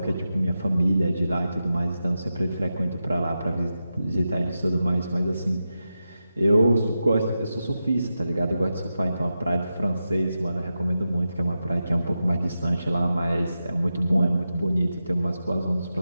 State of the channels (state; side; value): inverted; both; correlation -0.90